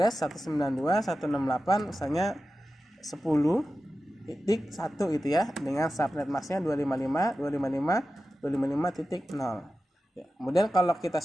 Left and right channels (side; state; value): both; normal; correlation 0.93